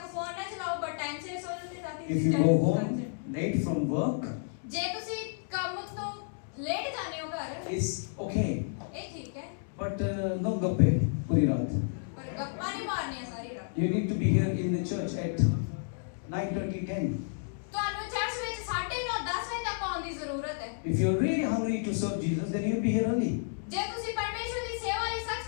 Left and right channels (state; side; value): silent; right; 57 dB below the other